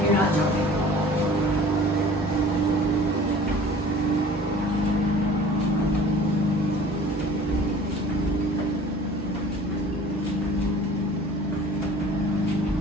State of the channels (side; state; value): both; normal; correlation 0.47